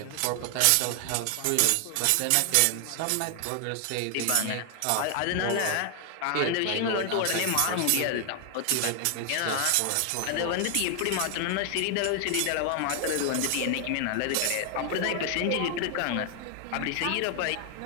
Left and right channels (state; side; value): different; both; correlation 0.00